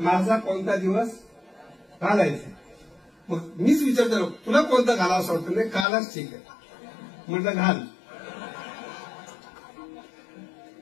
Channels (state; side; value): drops out; right; at 5.9 s